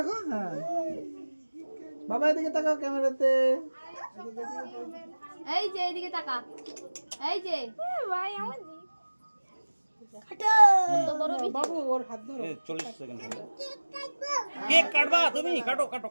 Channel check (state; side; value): inverted; both; correlation -1.00